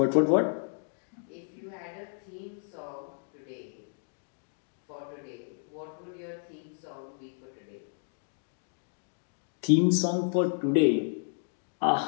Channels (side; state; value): right; silent; digital silence